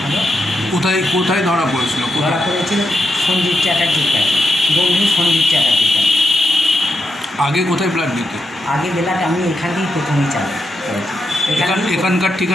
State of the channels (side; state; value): both; normal; correlation 0.84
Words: হলো। কোথায় কোথায় ধরা পড়েছিল? ধরা পড়েছিল সঞ্জীব চ্যাটার্জির কাছে, বন্ধু সঞ্জীব চ্যাটার্জির কাছে। আগে কোথায় ব্লাড দিতে? আগে বেলাটা আমি এখান থেকেই প্রথমেই চালু করেছি। এখানকার